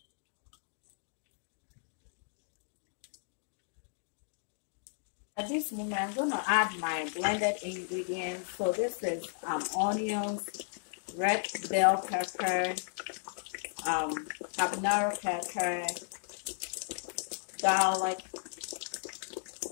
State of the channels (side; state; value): right; silent; digital silence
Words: At this moment, I'm gonna add my blended ingredients. So this is onions, red bell pepper, habanero pepper, garlic,